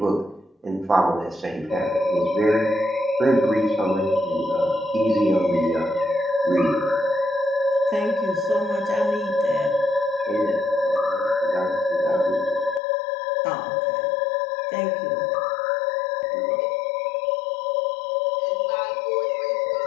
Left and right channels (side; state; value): right; drops out; at 12.8 s